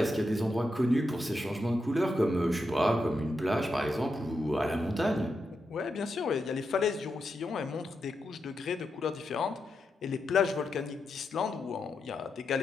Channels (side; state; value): both; normal; correlation 0.85